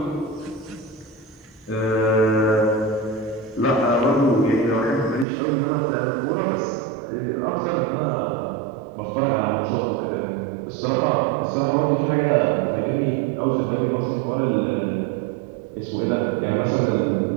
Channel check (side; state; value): left; drops out; at 5.2 s